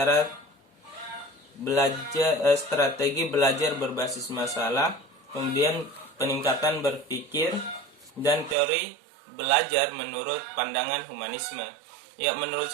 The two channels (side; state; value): left; drops out; at 8.6 s